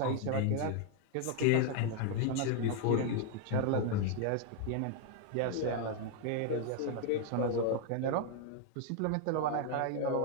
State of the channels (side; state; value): both; different; correlation 0.00